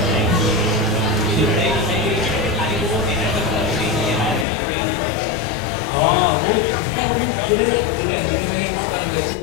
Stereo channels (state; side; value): drops out; right; at 4.5 s